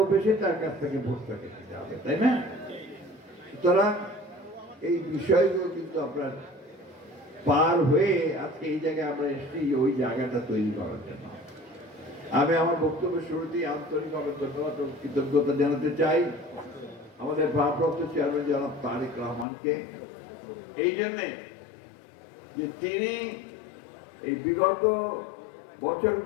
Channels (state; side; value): drops out; right; at 19.5 s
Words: তার কাছ থেকে ভোটটাকে দিতে হবে, তাই না? সুতরাং এই বিষয়গুলো কিন্তু আপনার পার হয়ে আজকে এই জায়গায় আমরা এসেছি, ওই জায়গাটা তৈরি করার জন্য। আমি আমার বক্তব্যের শুরুতেই আন্তরিকভাবে ধন্যবাদ ও কৃতজ্ঞতা জানাতে চাই আমাদের ভারপ্রাপ্ত চেয়ারম্যান জনাব তারেক রহমানকে, এই জন্যে যে তিনি এই বিগত